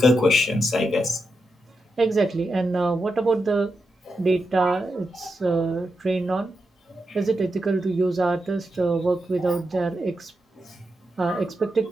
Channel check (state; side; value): normal; both; correlation 0.86